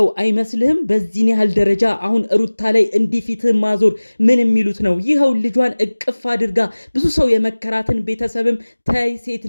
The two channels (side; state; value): both; inverted; correlation -1.00